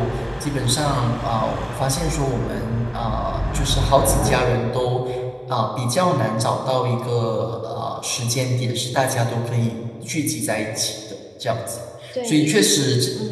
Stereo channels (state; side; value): identical; both; correlation 1.00